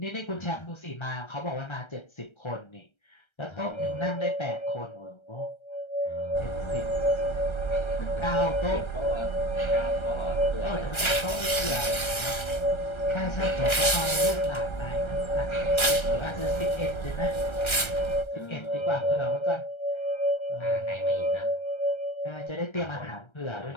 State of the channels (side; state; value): right; late; 1.3 ms